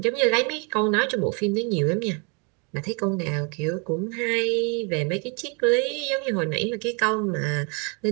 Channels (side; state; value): left; quieter; 34.1 dB